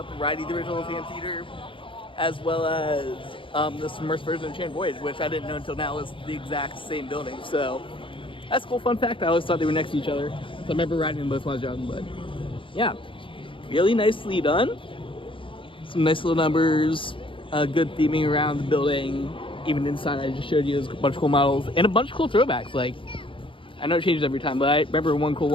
riding the original Phantom Theater, as well as the submerged version of Enchanted Voyage, which I didn't know until now was the exact same building. So that's a cool fun fact. I always thought they were next to each other. So I remember riding them both when I was young, but yeah, really nicely done. Some nice little numbers, good theming around the building. Even inside, I just showed you a bunch of cool models and a bunch of cool throwbacks. Like, I know it changes every time, but I remember one cool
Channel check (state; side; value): late; right; 0.25 ms